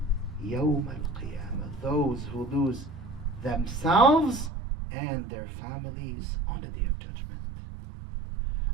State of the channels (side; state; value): left; drops out; at 4.5 s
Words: يَوْمَ الْقِيَامَةِ. Those who lose themselves and their families on the day of judgment.